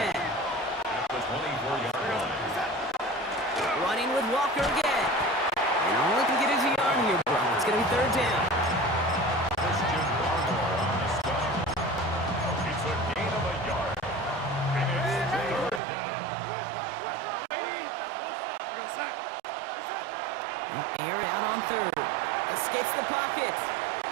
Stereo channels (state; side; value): drops out; left; at 15.8 s